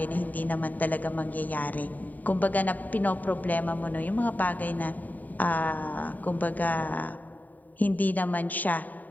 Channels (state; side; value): late; right; 0.082 ms